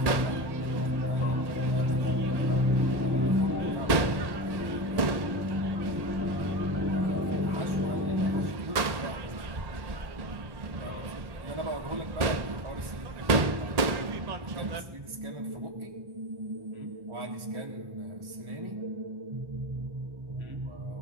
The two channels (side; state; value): left; late; 1.1 ms